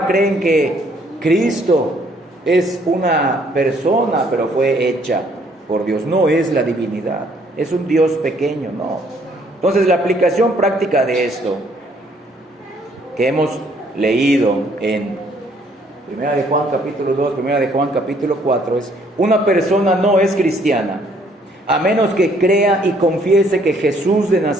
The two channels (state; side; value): normal; both; correlation 0.64